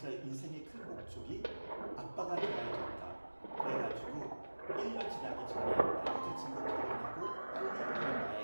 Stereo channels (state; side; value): inverted; both; correlation -1.00